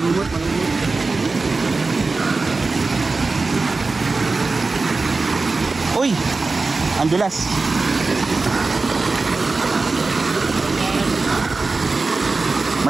Uy! Ang dulas.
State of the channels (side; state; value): left; quieter; 3.8 dB